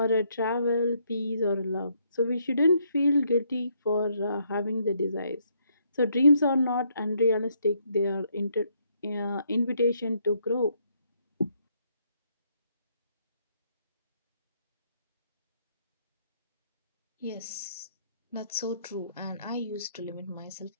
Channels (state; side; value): inverted; both; correlation -0.72